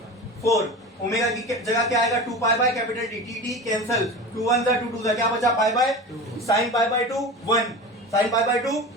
ओमेगा की जगह क्या आएगा? 2 pi by capital T। t cancel, 2 1 2 2 क्या बचा? पाई by 2, sign pi by 2 1, sign pi by 2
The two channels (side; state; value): both; normal; correlation 0.31